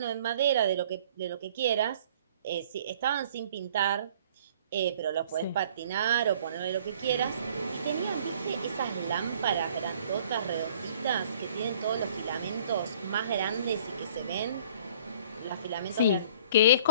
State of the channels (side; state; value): both; inverted; correlation -0.54